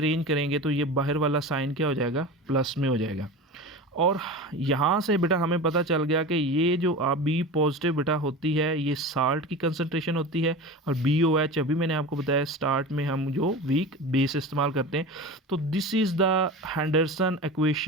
करेंगे तो ये बाहर वाला साइन क्या हो जाएगा, प्लस में हो जाएगा। और यहाँ से बेटा हमें पता चल गया कि ये जो B पॉजिटिव बेटा होती है, ये साल्ट की कंसंट्रेशन होती है, और BOH अभी मैंने आपको बताया स्टार्ट में हम जो वीक बेस इस्तेमाल करते हैं। तो this is the Henderson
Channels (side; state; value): both; normal; correlation 0.30